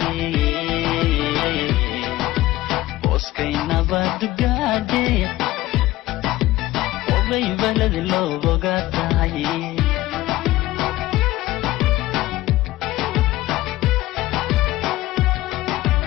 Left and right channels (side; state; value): right; quieter; 16.8 dB